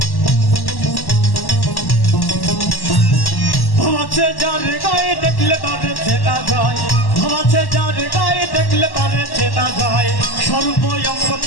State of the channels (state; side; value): late; right; 1.1 ms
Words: যার গায়ে দেখলে তারে চেনা যায়, ভাবাছে যার গায়ে দেখলে তারে চেনা যায়, সর্বঙ্গ